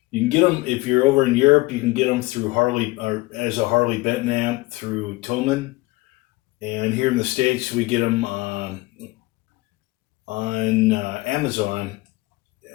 You can get them if you're over in Europe. You can get them through Harley or as a Harley Benton amp through Tillman, and here in the States we get them on Amazon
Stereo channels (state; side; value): quieter; right; 21.7 dB